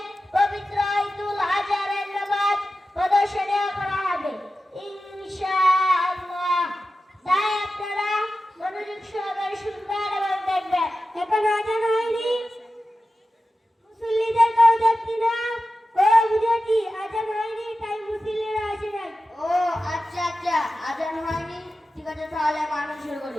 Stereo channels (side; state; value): both; normal; correlation 0.93